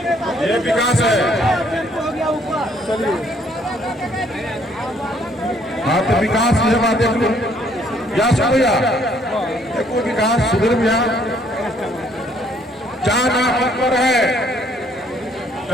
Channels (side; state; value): both; normal; correlation 0.65